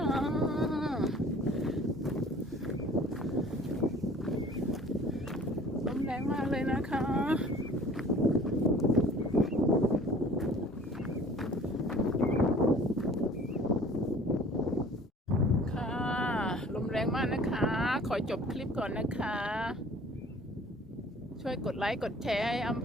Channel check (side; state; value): both; normal; correlation 0.50